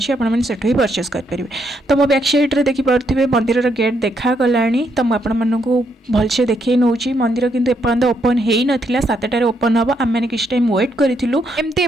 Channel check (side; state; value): both; normal; correlation 0.76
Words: आपण माने सेठो ही परचेस कर परिबे। तो मो बैक साइड रे देखि परथिबे मंदिर रो गेट देखा गलानी तो आपण मानकु भलसे देखै नउची मंदिर किंतु एपर्यंत ओपन हेई नथिला 7टारे ओपन हबो आम माने किछ टाइम वेट करिथिलु एमती